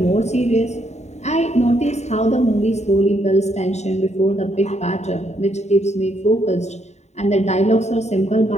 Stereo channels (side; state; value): right; late; 0.32 ms